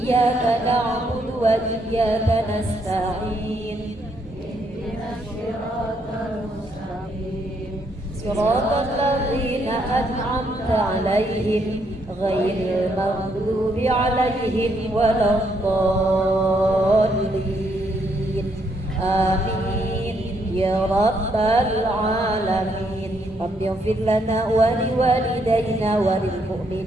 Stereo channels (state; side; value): normal; both; correlation 0.73